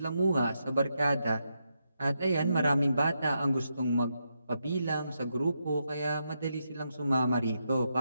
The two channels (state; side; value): inverted; both; correlation -0.83